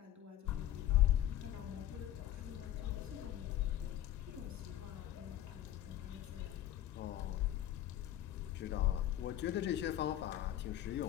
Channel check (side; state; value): right; quieter; 12.7 dB